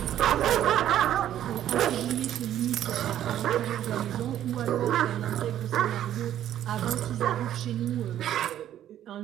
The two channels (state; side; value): quieter; left; 11.5 dB